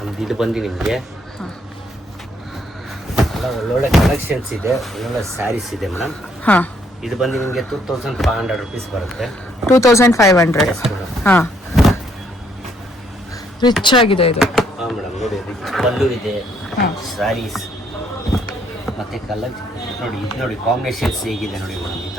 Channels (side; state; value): both; normal; correlation 0.69